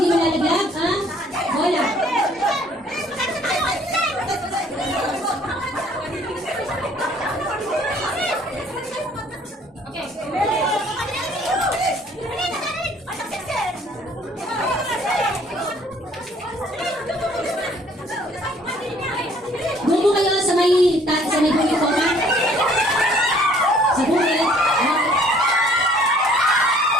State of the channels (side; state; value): both; normal; correlation 0.58